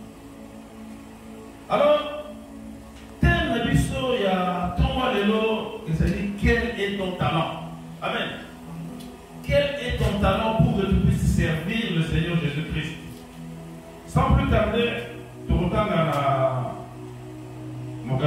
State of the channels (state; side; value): identical; both; correlation 1.00